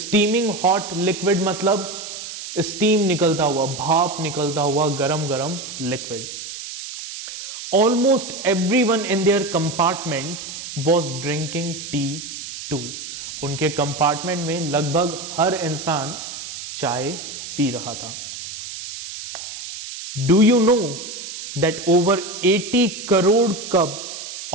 हॉट लिक्विड मतलब स्टीम निकलता हुआ, भाप निकलता हुआ गरम गरम liquid. Almost everyone in their compartment was drinking tea too. उनके कंपार्टमेंट में लगभग हर इंसान चाय पी रहा था. Do you know that over 80 crore cups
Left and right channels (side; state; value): right; noise; hiss, 10 dB below the sound